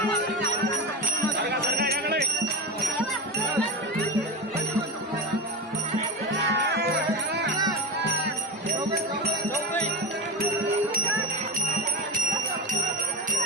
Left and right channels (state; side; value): normal; both; correlation 0.21